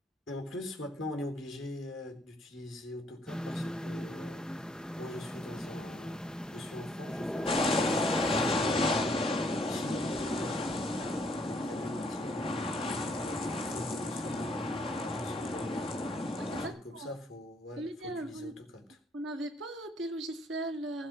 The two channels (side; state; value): both; normal; correlation 0.67